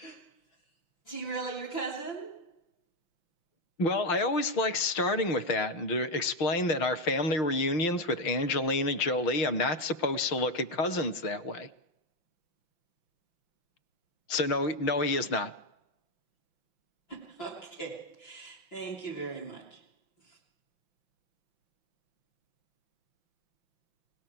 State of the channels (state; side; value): late; right; 5.9 ms